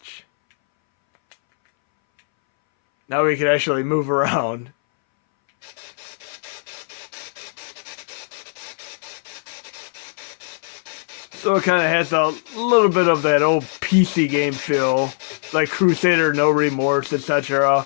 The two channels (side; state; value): right; silent; 63 dB below the other